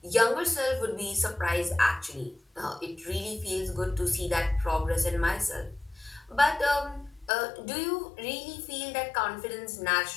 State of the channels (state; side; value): drops out; right; at 7.3 s